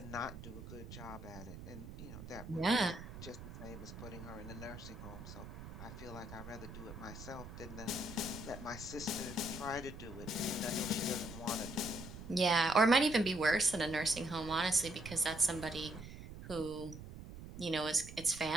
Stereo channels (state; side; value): noise; right; rumble, 12 dB below the sound